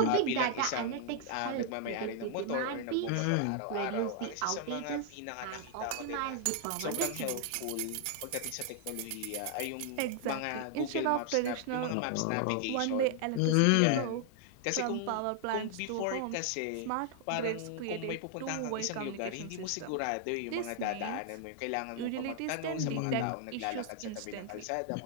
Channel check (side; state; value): both; different; correlation 0.00